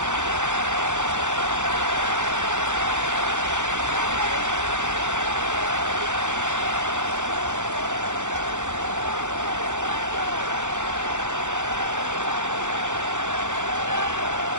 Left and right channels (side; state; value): left; late; 0.85 ms